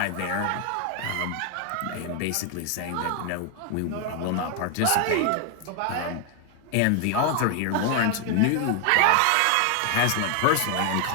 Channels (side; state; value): both; different; correlation 0.00